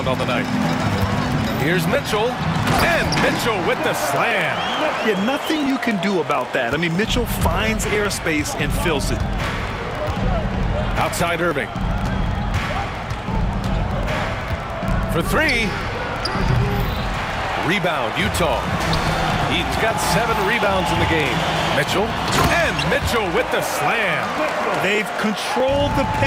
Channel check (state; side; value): identical; both; correlation 1.00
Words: on the night. Here's Mitchell. And Mitchell with the slam. Yeah, nothing you can do about that. I mean, Mitchell finds airspace and fills it. Outside Irving. For 3. Rebound, Utah. Eaton's got 7 rebounds in the game. Mitchell. And Mitchell with the slam. They've controlled the